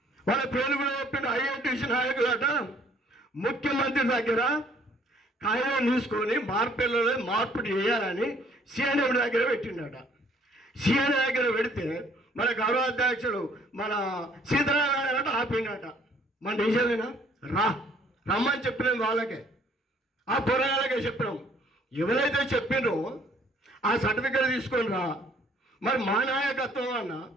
వాళ్ళ పేర్లు కూడా చెప్పిండు. ఐఐటీసీ నాయకులట ముఖ్యమంత్రి దగ్గర కాగితం తీసుకొని మార్పేర్లలో మార్పు చేయాలని సిఎండబ్ల్యూ దగ్గర పెట్టిండట. సిఎండబ్ల్యూ దగ్గర పెడితే మన గౌరవాధ్యక్షుడు మన సీతారామరాజు ఆపిండట. మన నిజమేనా? రమ్మని చెప్పినాం వాళ్ళకే, ఆ పోరాళ్ళకే చెప్పినాం. ఎవరైతే చెప్పినో ఆ సర్టిఫికేట్ తీసుకొని రా. మరి మా నాయకత్వం అన్న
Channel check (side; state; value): both; normal; correlation 0.60